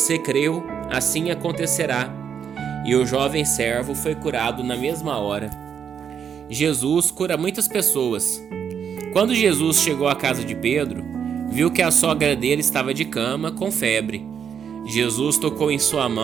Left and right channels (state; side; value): quieter; left; 7.7 dB